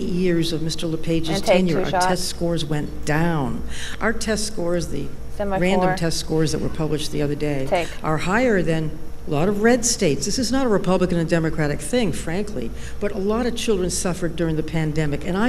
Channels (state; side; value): identical; both; correlation 1.00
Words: of Mr. LePage's And take tenure, our two-shot. test scores went down. Our test scores, the Semi-4. random test scores that were published the other day, Take. are higher than a lot of red states. This is not a Republican and Democratic thing, frankly, but a lot of children suffered during the pandemic, and